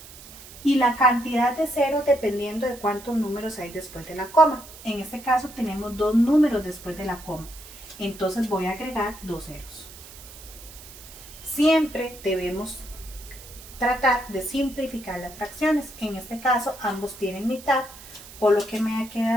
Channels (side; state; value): right; noise; hiss, 17 dB below the sound